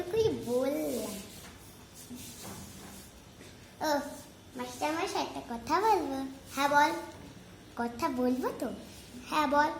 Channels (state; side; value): identical; both; correlation 1.00